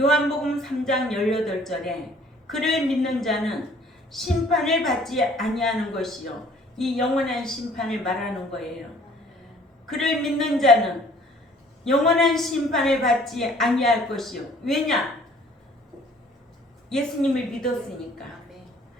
3장 18절에 그를 믿는 자는 심판을 받지 아니하는 것이요 이 영원한 심판을 말하는 거예요. 그를 믿는 자는 영원한 심판을 받지 아니할 것이요. 왜냐? 예수님을 믿었으니까.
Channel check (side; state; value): both; normal; correlation 0.56